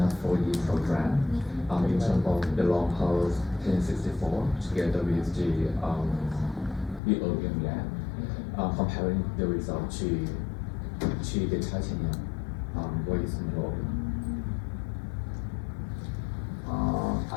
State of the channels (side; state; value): right; drops out; at 7.0 s